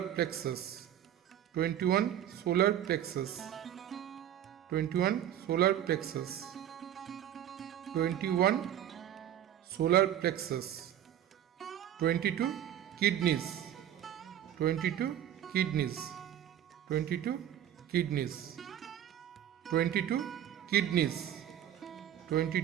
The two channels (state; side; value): quieter; left; 10.8 dB